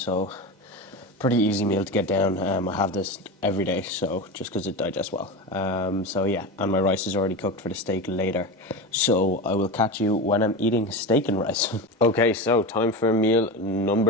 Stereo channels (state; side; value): normal; both; correlation 0.23